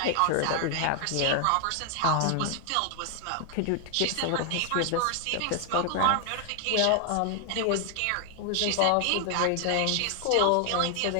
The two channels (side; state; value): both; different; correlation 0.00